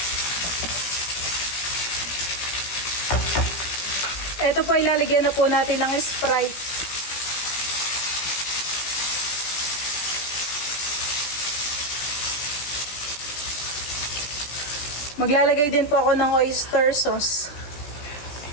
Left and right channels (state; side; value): late; right; 17 ms